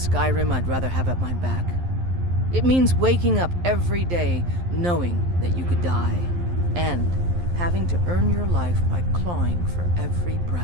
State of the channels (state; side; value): late; left; 11 ms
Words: I'd rather have at my back. It means waking up every day knowing that you could die, and having to earn your life by clawing for every